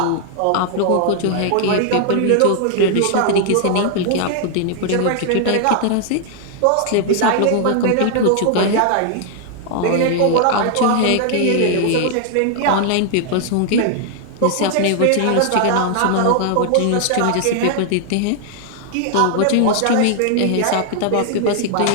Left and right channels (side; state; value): both; different; correlation 0.00